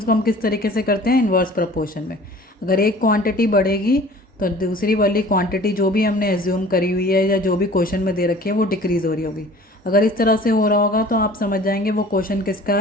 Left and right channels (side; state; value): both; normal; correlation 0.47